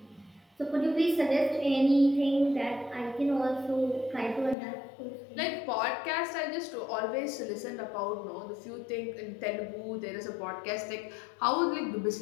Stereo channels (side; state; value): right; drops out; at 4.5 s